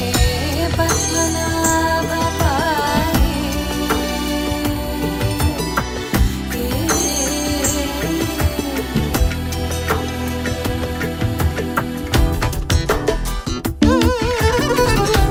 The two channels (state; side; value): identical; both; correlation 1.00